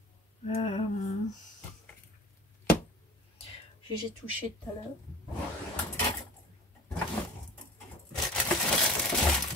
J'ai touché tout à l'heure.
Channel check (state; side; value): normal; both; correlation 0.40